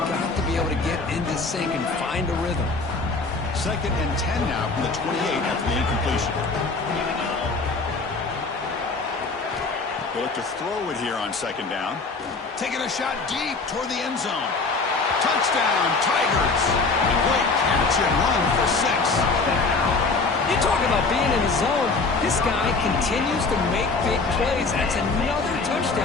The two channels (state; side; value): quieter; right; 4.0 dB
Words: to be able to get into sync and find a rhythm. Second and 10 now from the 28 after the incompletion. They look to throw it here on second down. Taking a shot deep toward the end zone. Touchdown, Tigers. A great catch and run for 6. You talk about being in the zone. This guy continues to make big plays. That's another